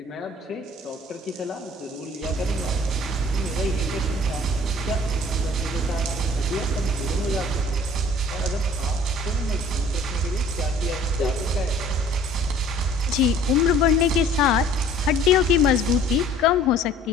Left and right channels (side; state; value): both; normal; correlation 0.52